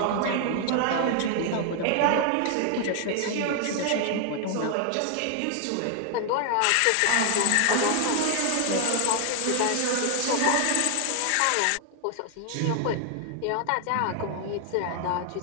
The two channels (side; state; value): both; different; correlation 0.00